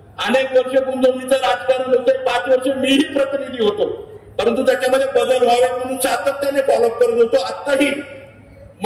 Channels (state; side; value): identical; both; correlation 1.00